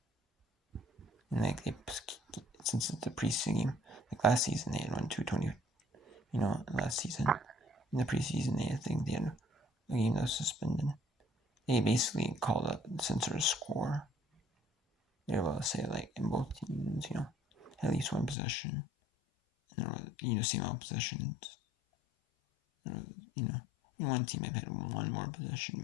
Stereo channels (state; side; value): drops out; right; at 18.4 s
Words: And like since it's the preseason game, like last season they had won 220. Last season in the preseason I think they had a game that was suspended. They basically called a censor score. They were able to say like in both teams, at least one possession, and there was same amount of possessions. There was, one team might have had one more possession,